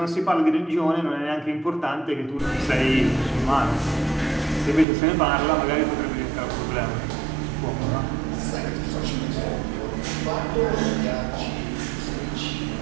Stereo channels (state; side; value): drops out; left; at 4.9 s